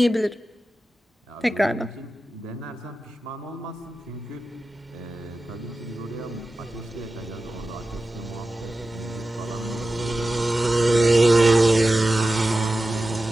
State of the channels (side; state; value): both; normal; correlation 0.94